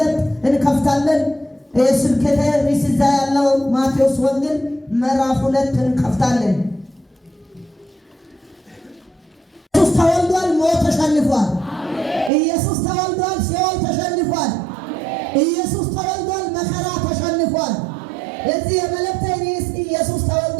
እንከፍታለን። ስብከተ ርዕስ እዛ ያለው ማቴዎስ ወንጌል ምዕራፍ 2 እንከፍታለን። ኢየሱስ ተወልዷል፣ ሞት ተሸንፏል። ኢየሱስ ተወልዷል፣ ሲኦል ተሸንፏል። ኢየሱስ ተወልዷል፣ መከራ ተሸንፏል። እዚህ የመልእክቴ ርዕስ ኢየሱስ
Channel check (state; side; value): drops out; left; at 12.3 s